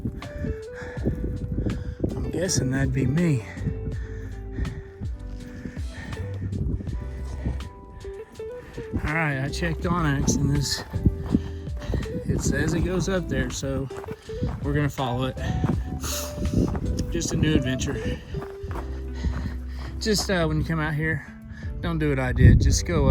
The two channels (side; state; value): both; identical; correlation 1.00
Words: I'm guessing that'd be me. All right, I checked Onyx and it says it goes up there, so we're gonna follow it. Just a new adventure. Just when you come out here, don't do what I did. Just go